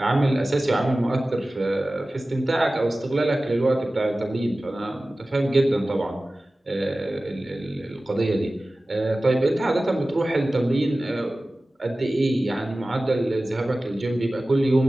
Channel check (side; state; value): both; normal; correlation 0.97